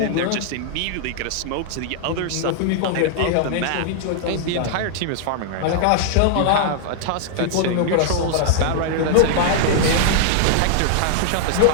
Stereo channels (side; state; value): both; different; correlation -0.01